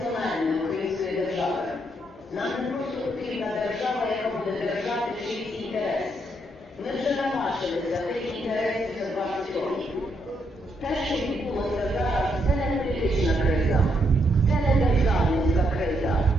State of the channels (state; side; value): normal; both; correlation 0.76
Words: української держави. Нам не просто потрібна держава, яка буде держати чийсь інтерес. Ми вже наважилися тих інтересів за 20 років. Те, що відбулося зараз, це не політична криза, це не державницька криза,